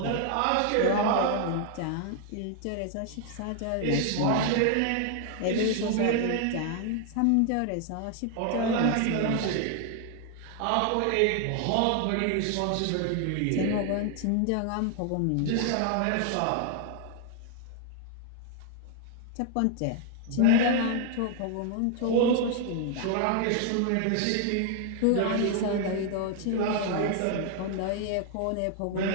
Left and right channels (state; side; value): different; both; correlation 0.00